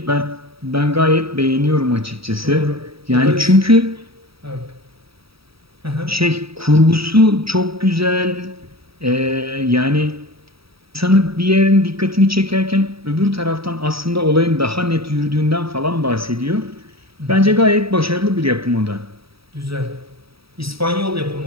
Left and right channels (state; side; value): late; left; 0.76 ms